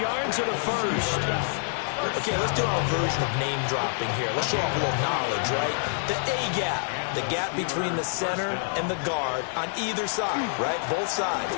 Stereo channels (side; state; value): right; silent; 60 dB below the other